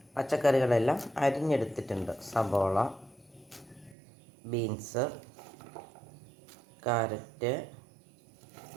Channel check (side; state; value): left; drops out; at 4.0 s